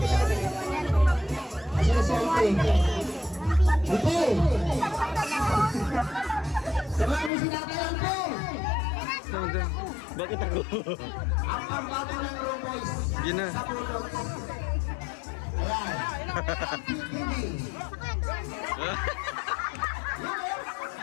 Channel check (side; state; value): right; drops out; at 7.3 s